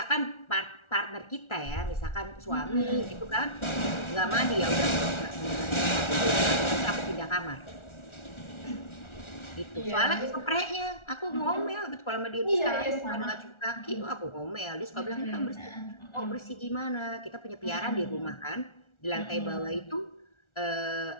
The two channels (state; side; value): late; right; 1.4 ms